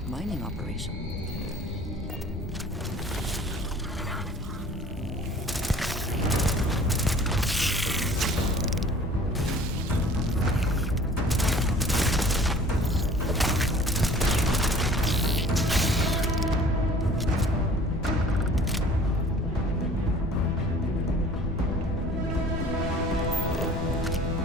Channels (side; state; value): both; normal; correlation 0.49